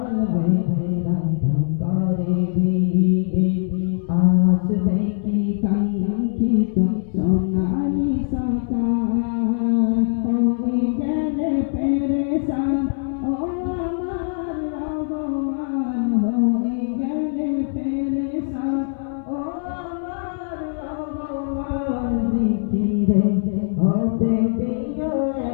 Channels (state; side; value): silent; right; 64 dB below the other